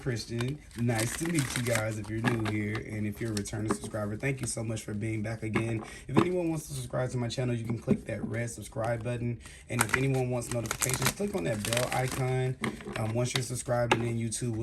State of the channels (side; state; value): both; identical; correlation 1.00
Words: Nice to meet you guys if you're new here. And if you're a returning subscriber, thank you so much for being back again. If anyone wants to subscribe to my channel, you can click that red subscribe button. And if anyone wants notifications, click on that bell icon. Once you're subscribed, and then YouTube